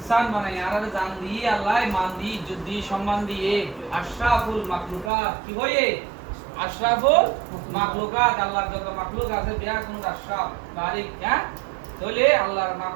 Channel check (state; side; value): drops out; left; at 5.1 s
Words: বানাই, আরা জান দিয়ে আল্লাহ মান দিয়ে, ইজ্জত দিয়ে, সম্মান দিয়ে আশরাফুল মাখলুকাত কি হয়ে? আশরাফুল মাখলুকাত। আল্লাহর যত মাখলুক আছে বিয়া কোন আশরাফ বারিক, হ্যাঁ? তাহলে আল্লাহর